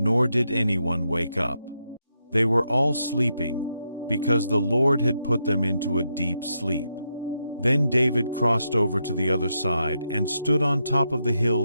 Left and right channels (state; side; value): inverted; both; correlation -0.83